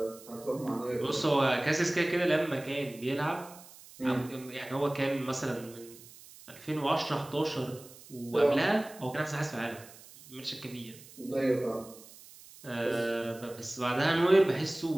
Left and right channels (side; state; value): right; noise; hiss, 20 dB below the sound